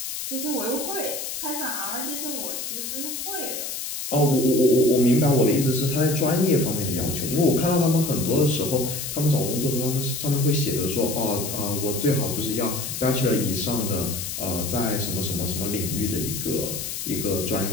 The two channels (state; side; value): noise; left; hiss, 5 dB below the sound